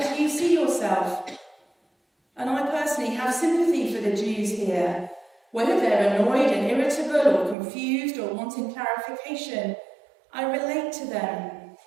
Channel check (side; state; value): left; drops out; at 7.6 s